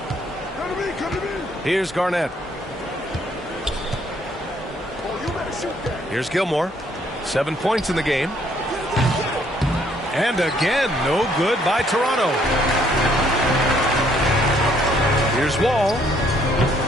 Here's Garnett. Here's Gilmore. 7 points in the game. And again, no good by Toronto. Here's Wall.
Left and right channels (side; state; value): both; normal; correlation 0.66